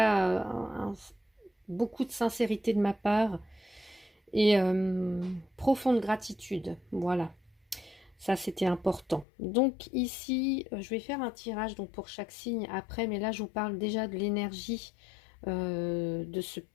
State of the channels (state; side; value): drops out; right; at 9.2 s